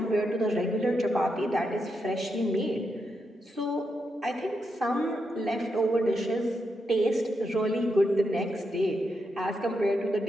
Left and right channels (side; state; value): both; normal; correlation 0.84